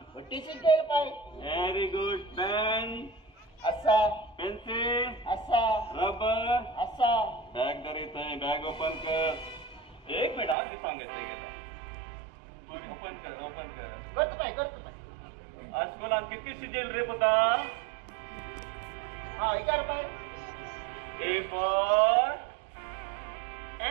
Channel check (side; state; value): left; drops out; at 10.6 s